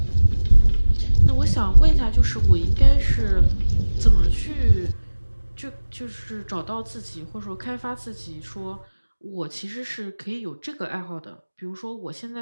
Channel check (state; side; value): inverted; both; correlation -1.00